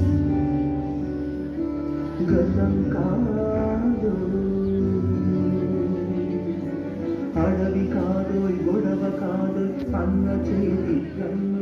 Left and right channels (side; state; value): both; identical; correlation 1.00